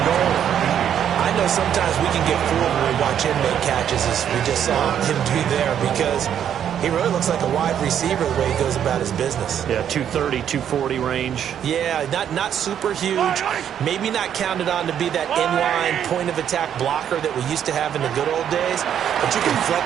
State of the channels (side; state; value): left; quieter; 9.4 dB